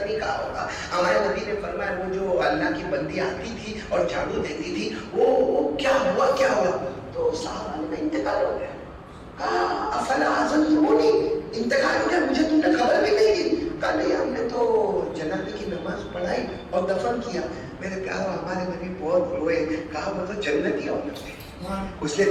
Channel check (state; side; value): identical; both; correlation 1.00